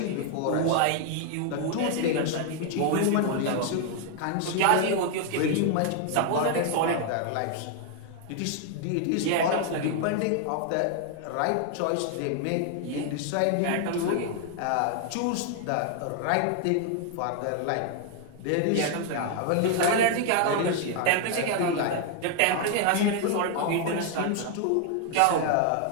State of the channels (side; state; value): both; different; correlation 0.00